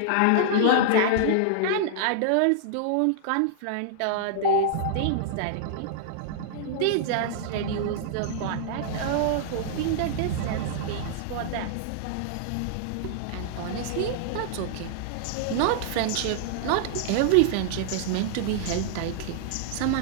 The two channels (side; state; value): both; different; correlation -0.01